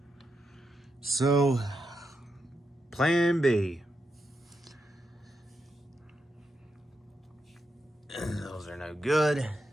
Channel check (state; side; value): normal; both; correlation 0.85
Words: So, plan B. Those are no good.